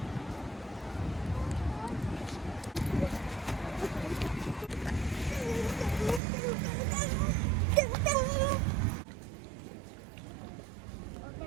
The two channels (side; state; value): left; drops out; at 6.2 s